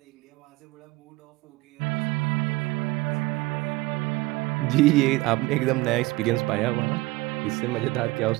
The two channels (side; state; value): left; quieter; 20.7 dB